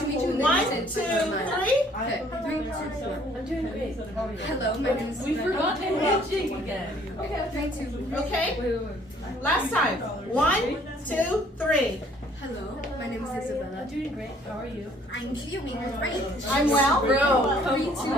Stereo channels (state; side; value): normal; both; correlation 0.60